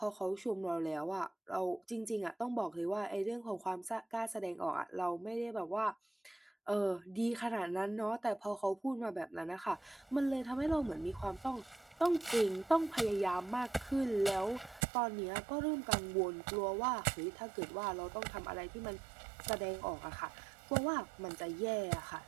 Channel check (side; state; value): left; drops out; at 14.8 s